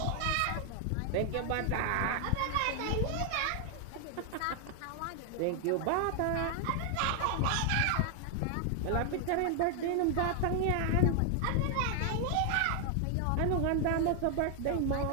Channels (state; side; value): different; both; correlation 0.00